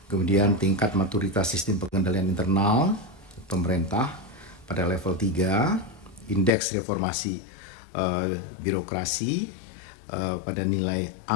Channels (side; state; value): right; drops out; at 6.5 s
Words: Kemudian tingkat maturitas sistem pengendalian internal pemerintah pada level 3, indeks reformasi birokrasi pada nilai